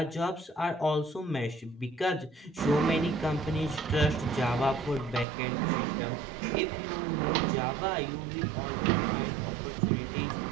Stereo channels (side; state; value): left; drops out; at 5.2 s